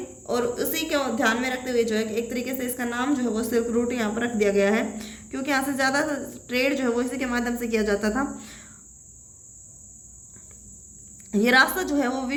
और उसी को ध्यान में रखते हुए जो है एक तरीके से इसका नाम जो है वो सिल्क रूट यहाँ पर रख दिया गया है, क्योंकि यहाँ से ज़्यादा ट्रेड जो है वो इसी के माध्यम से किया जाता था। ये रास्ता जो है वो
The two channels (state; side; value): identical; both; correlation 1.00